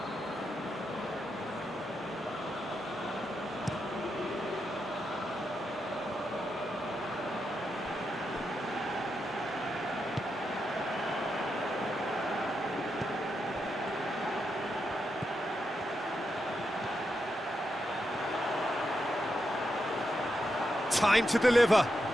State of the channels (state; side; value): normal; both; correlation 0.85